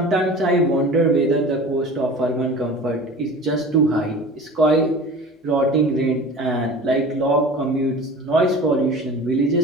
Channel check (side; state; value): both; normal; correlation 0.39